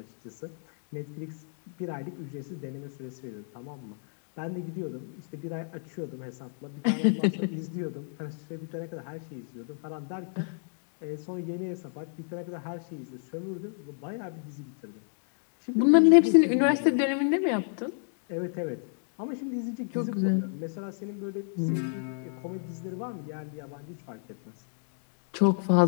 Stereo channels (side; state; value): right; silent; digital silence